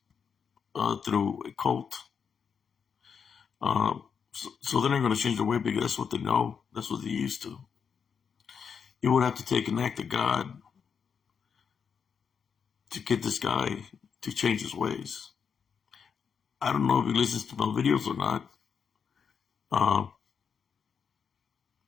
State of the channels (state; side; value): quieter; right; 6.6 dB